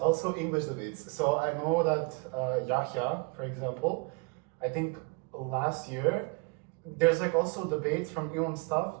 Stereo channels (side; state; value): left; quieter; 30.5 dB